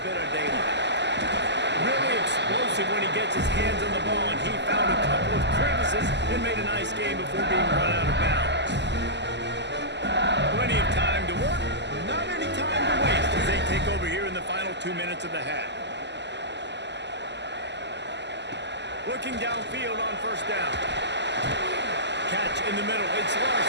bit of daylight. Really explosive when he gets his hands on the ball, and he found a couple of crevices and made a nice game before being run out of bounds. Plenty of time to work, not any time to waste as they take over here in the final 2 minutes of the half. Looking downfield on first down. Catch in the middle, it's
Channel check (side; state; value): left; late; 0.51 ms